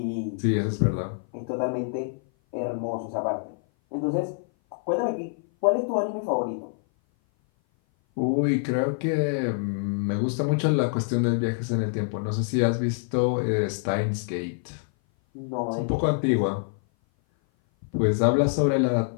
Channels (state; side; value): silent; right; 57 dB below the other